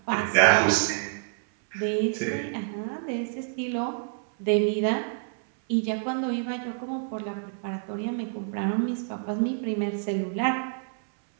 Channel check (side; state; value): left; silent; 60 dB below the other